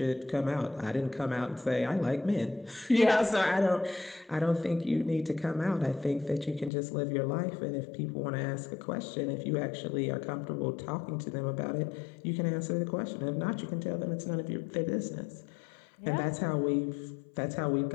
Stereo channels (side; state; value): right; drops out; at 6.7 s